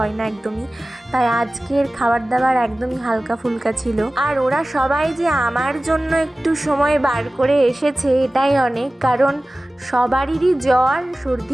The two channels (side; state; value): both; normal; correlation 0.97